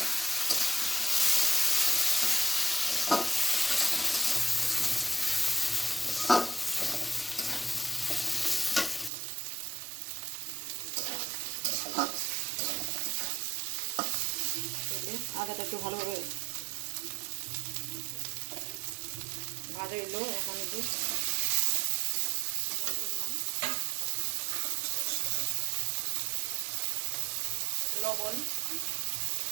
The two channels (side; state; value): left; drops out; at 9.1 s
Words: আদাটা একটু ভালোভাবে ভাজা এলো এখন একটু লবণ